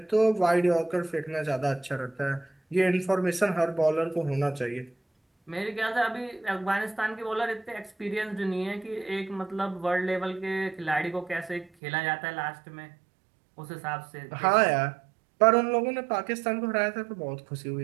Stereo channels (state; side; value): drops out; left; at 11.7 s